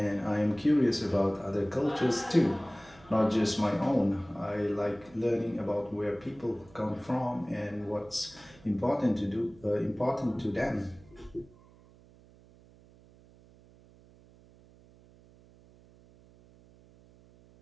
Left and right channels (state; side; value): noise; right; hum, 25 dB below the sound